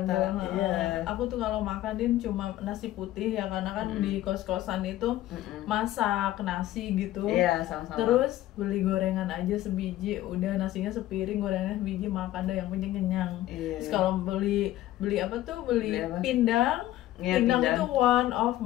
Iya. Aku tuh kalau makanin cuma nasi putih ya, karena kan di kos-kosan itu masak nasi gitu. Iya, sama-sama. Terus beli gorengan aja sebiji, udah nasinya sepiring, gorengannya sebiji, makan deh yang penting kenyang. Iya. Terus kalau beli apa tuh, beli Beli apa? pindang. Iya, Pindang pindang. itu one of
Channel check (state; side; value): quieter; right; 14.5 dB